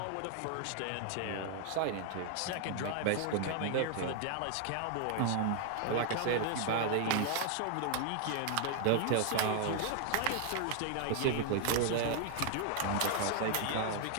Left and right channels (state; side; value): different; both; correlation 0.00